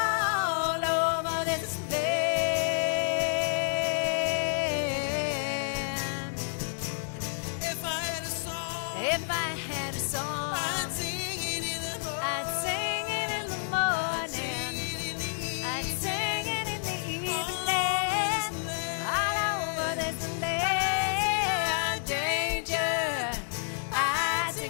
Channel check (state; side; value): silent; right; 58 dB below the other